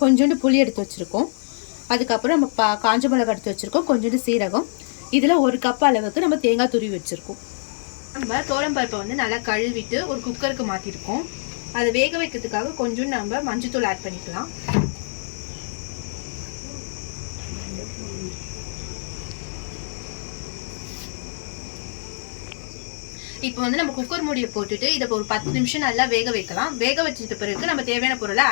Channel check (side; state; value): right; silent; 63 dB below the other